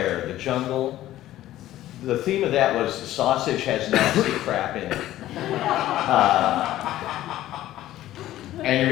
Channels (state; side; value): quieter; right; 14.2 dB